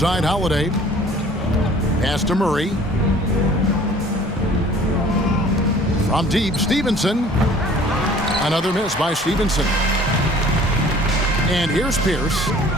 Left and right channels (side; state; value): both; normal; correlation 0.51